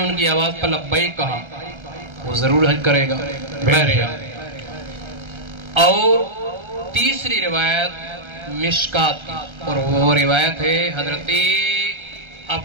کی آواز پر لبیک کہا وہ ضرور حج کرے گا. اور تیسری روایت مشکات کی، اور وہ روایت ہے حضرت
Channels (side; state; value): left; late; 1.3 ms